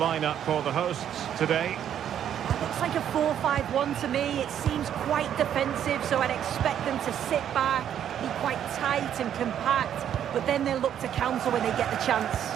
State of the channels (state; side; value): quieter; left; 9.7 dB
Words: for the hosts today. It looks like a 4-5-1 to me. It seems quite defensive, so I'd expect them to sit back, be quite tight and compact. but then they'll look to counter when they get the chance.